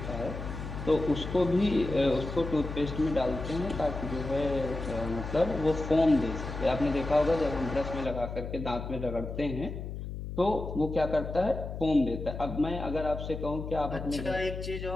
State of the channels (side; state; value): left; noise; hum, 7 dB below the sound